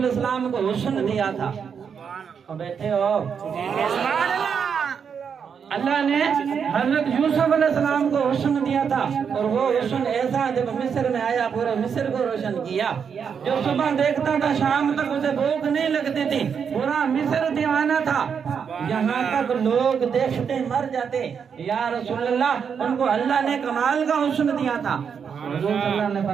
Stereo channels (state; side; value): quieter; left; 6.9 dB